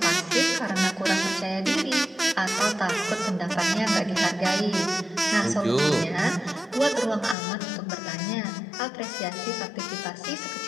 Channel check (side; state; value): right; drops out; at 7.4 s